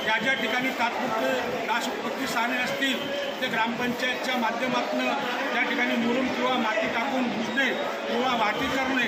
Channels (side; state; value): both; identical; correlation 1.00